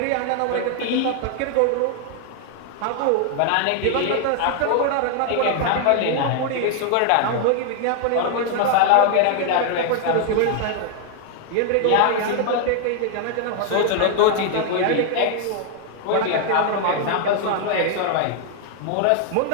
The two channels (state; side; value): different; both; correlation 0.00